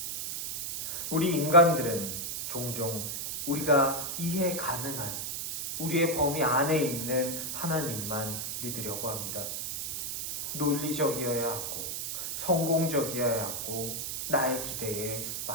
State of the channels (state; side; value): noise; right; hiss, 4 dB below the sound